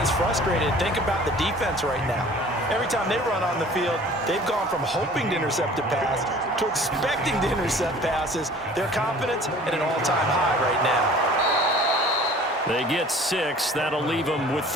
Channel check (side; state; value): both; normal; correlation 0.48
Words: frustrated. Think about the defense right now. Every time they run on the field, they've gone from hoping to intercept a pass to expecting to intercept passes. Their confidence at an all-time high right now. They get 6. That'll leave them with